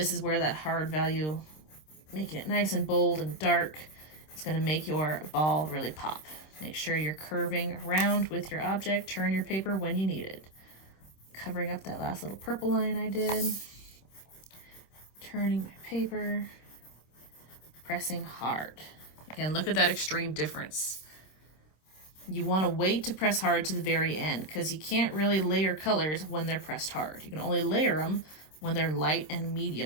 is where that hard value, making it nice and bold and dark, is going to make your ball really pop. Make sure you're curving around with your object. Turn your paper when you need it. Covering up that last little purple line I did. Turning my paper. Pressing hard. Again, look at that extreme difference. You want to wait to press hard to the very end because you can't really layer colors when they're pressed hard. You can only layer them when they're light and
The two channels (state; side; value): late; right; 26 ms